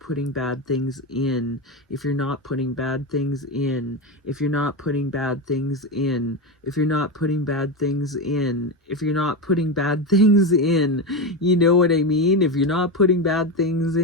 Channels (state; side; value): normal; both; correlation 0.15